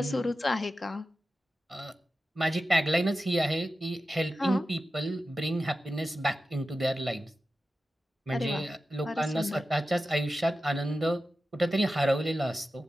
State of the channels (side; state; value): both; normal; correlation 0.92